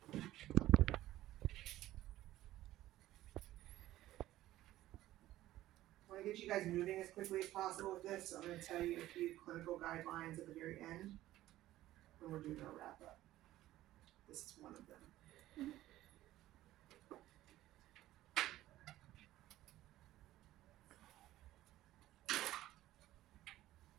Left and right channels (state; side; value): quieter; left; 14.9 dB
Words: I want to get you guys moving as quickly as possible with this, so I'm going to tell you a few clinical guidelines at the very end when we're doing our wrap up. This is one of them.